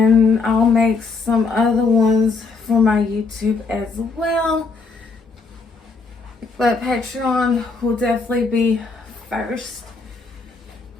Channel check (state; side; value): quieter; right; 4.3 dB